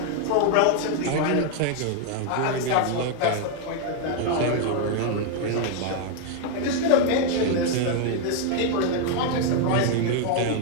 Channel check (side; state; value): both; different; correlation 0.00